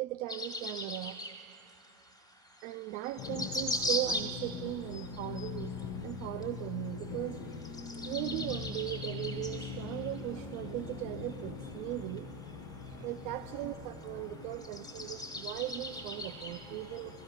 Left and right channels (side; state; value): left; quieter; 3.6 dB